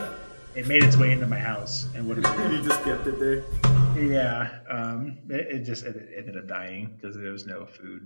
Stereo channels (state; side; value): inverted; both; correlation -1.00